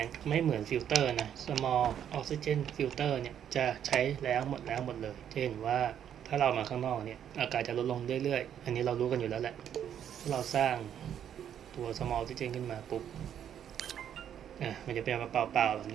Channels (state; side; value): quieter; left; 9.5 dB